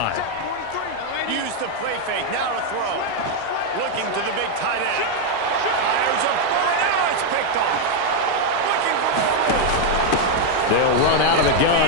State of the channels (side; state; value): both; different; correlation 0.01